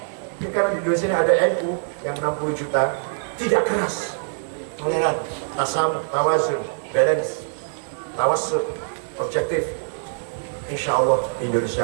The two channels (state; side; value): silent; left; digital silence